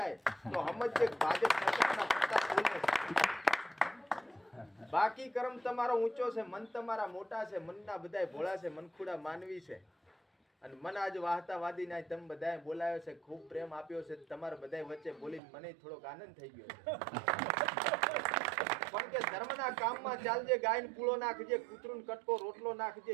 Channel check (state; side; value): drops out; left; at 15.4 s